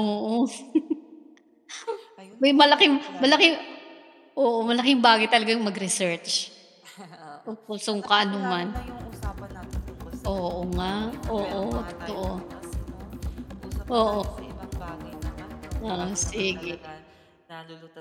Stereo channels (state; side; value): identical; both; correlation 1.00